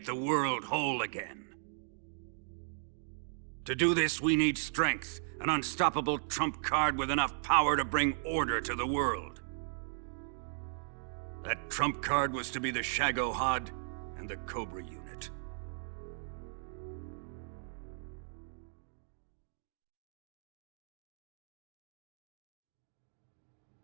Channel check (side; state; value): left; silent; digital silence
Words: the world whole again. To do this, we need strength, an unstoppable trump card with enough power to bring order to the world. That trump card was to be the Shagohod and the Cobra unit.